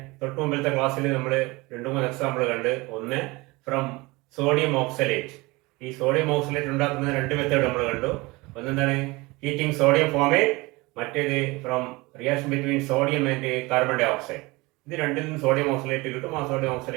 തൊട്ട് മുമ്പിലത്തെ ക്ലാസ്സിൽ നമ്മൾ 2-3 എക്സാമ്പിൾ കണ്ട്. ഒന്ന് ഫ്രം സോഡിയം ഓക്സലേറ്റ്. ഈ സോഡിയം ഓക്സലേറ്റ് ഉണ്ടാക്കുന്ന 2 മെത്തേഡ് നമ്മൾ കണ്ടു. ഒന്നെന്താണ് ഹീറ്റിംഗ് സോഡിയം ഫോമേറ്റ്, മറ്റേത് from reaction between sodium and carbon dioxide. ഇത് രണ്ടിൽ നിന്ന് സോഡിയം ഓക്സലേറ്റ് കിട്ടും. ആ സോഡിയം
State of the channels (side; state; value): left; quieter; 23.2 dB